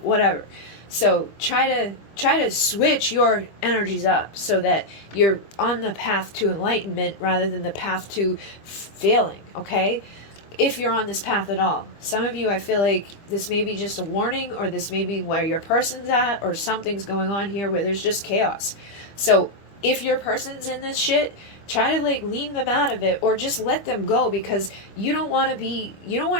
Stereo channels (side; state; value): right; late; 25 ms